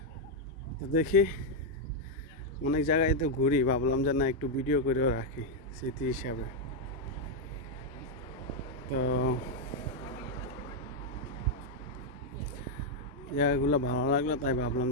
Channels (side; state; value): both; normal; correlation 0.00